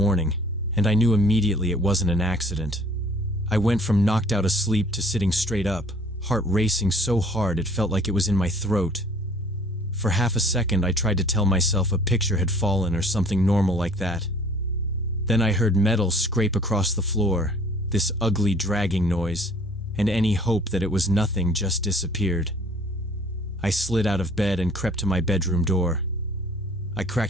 and I knew immediately it wasn't an accident. I went from knocked out asleep to sitting straight up, heart racing so hard it felt like it was in my throat. For half a second I tried to tell myself a picture had fallen or something normal like that. Then I heard metal scrape across the floor, this ugly dragging noise, and any hope that it was nothing just disappeared. I slid out of bed and crept to my bedroom door. I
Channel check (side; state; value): both; normal; correlation 0.54